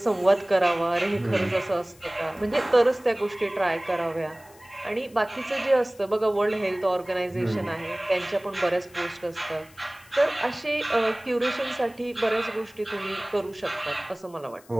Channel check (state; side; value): noise; left; hiss, 26 dB below the sound